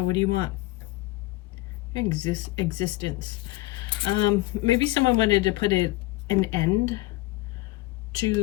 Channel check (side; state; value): right; quieter; 19.6 dB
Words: what do you want? Existence. Maybe someone wanted to put an end